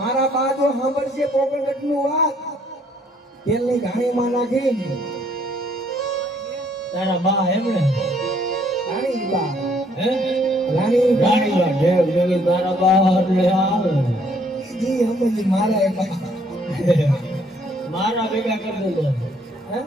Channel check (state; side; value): normal; both; correlation 0.65